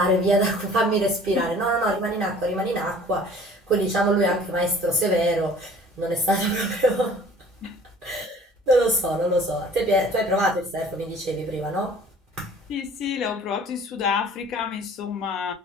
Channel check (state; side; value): normal; both; correlation 0.50